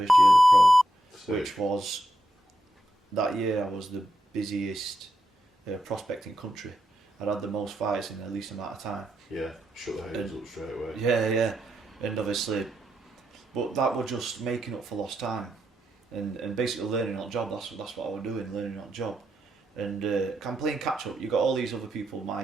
year as a pro, Sick. which was, that year I was the busiest prospect in country. I'd had the most fights in the least amount of time. Yeah, shut the haters up straight away. Yeah, and obviously, but that was just making up for lost time, and basically learning on the job. That's what I was doing, learning on the job, and I'm playing catch up. You got all these other people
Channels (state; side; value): normal; both; correlation 0.84